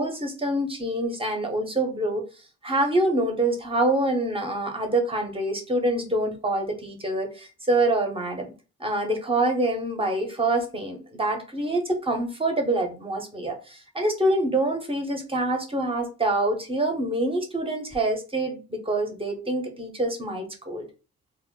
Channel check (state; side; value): normal; both; correlation 0.38